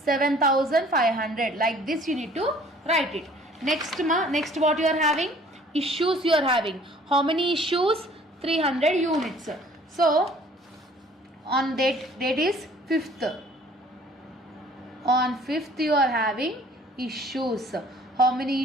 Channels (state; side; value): normal; both; correlation 0.54